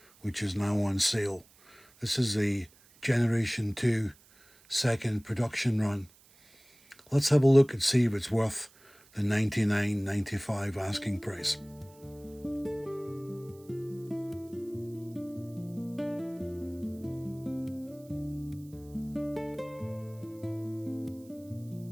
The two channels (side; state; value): right; noise; hiss, 27 dB below the sound